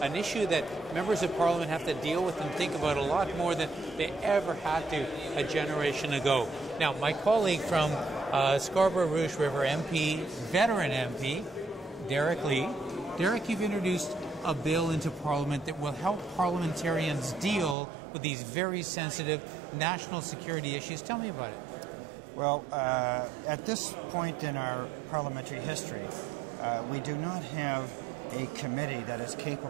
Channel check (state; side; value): drops out; left; at 17.8 s